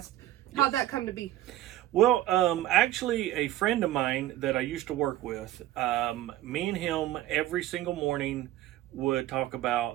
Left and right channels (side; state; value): left; quieter; 14.5 dB